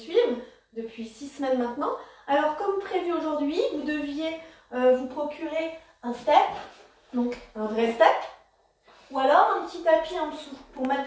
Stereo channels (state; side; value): identical; both; correlation 1.00